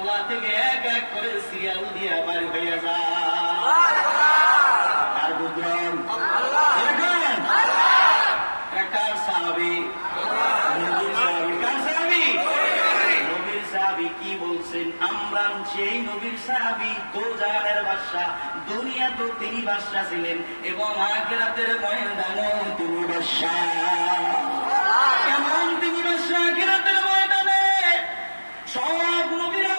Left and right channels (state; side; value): inverted; both; correlation -1.00